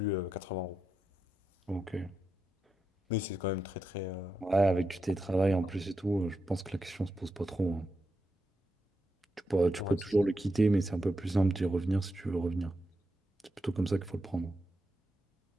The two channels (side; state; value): both; normal; correlation 0.86